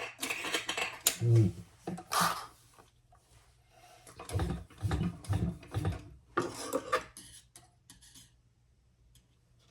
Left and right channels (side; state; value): both; identical; correlation 1.00